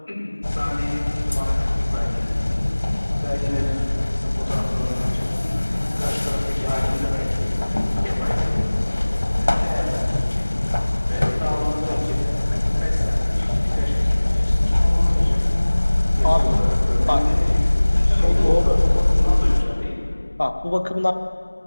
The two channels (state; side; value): inverted; both; correlation -1.00